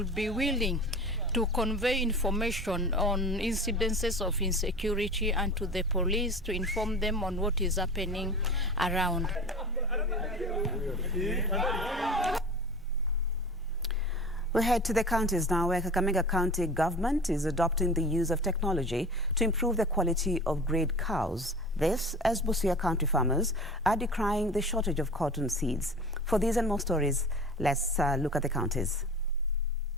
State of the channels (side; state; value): both; normal; correlation 0.36